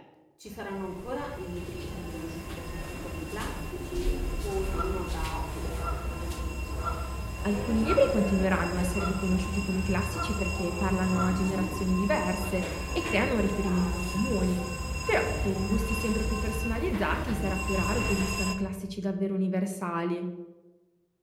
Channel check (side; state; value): both; identical; correlation 1.00